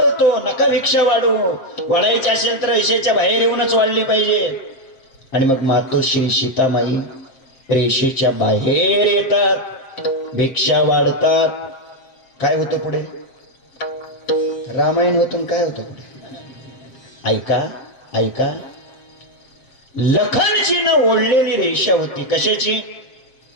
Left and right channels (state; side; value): late; right; 7.5 ms